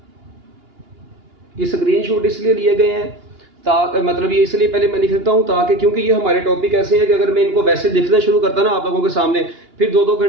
ये स्क्रीनशॉट इसलिए लिए गए हैं ताकि मतलब ये इसलिए पहले मैं लिख देता हूं ताकि, क्योंकि ये हमारे टॉपिक ऐसे हैं कि अगर मैं इनको वैसे लिखना शुरू करता ना आप लोगों के सामने, फिर 2-2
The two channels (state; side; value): late; left; 2.8 ms